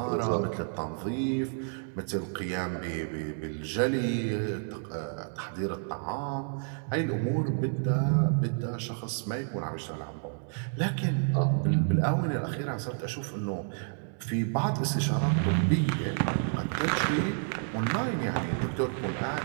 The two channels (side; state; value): left; silent; 58 dB below the other